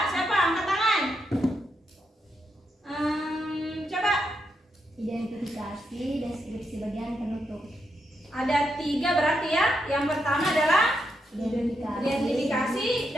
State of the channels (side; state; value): both; normal; correlation 0.82